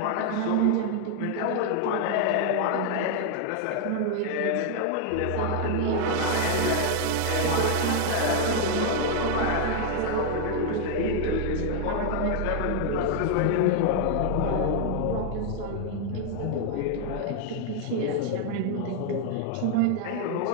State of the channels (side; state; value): both; different; correlation 0.00